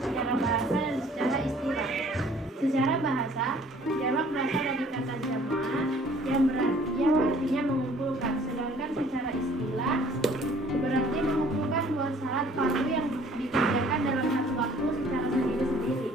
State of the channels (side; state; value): both; normal; correlation 0.56